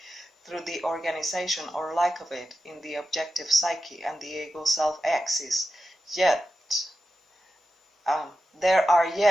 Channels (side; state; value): both; normal; correlation 0.91